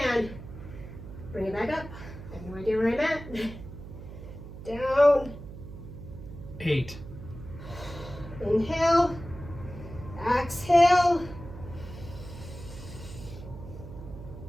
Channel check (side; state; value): right; noise; hum, 12 dB below the sound